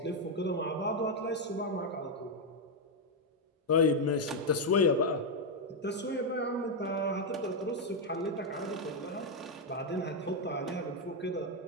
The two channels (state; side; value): normal; both; correlation 0.02